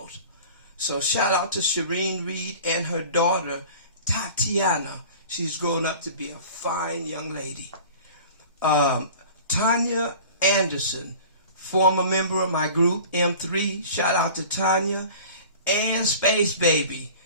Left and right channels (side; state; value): both; inverted; correlation -0.41